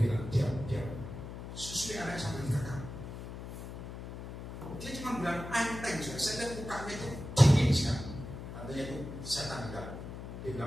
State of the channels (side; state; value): left; noise; hum, 9 dB below the sound